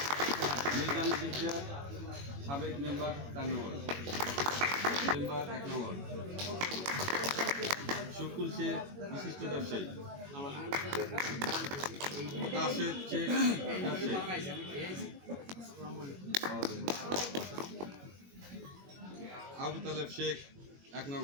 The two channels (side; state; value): left; late; 21 ms